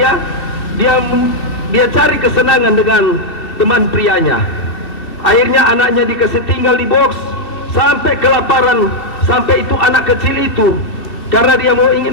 cari kesenangan dengan teman prianya. Akhirnya anaknya dikasih tinggal di box sampai kelaparan. Sampai itu anak kecil itu, karena dia mau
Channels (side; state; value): right; late; 2.7 ms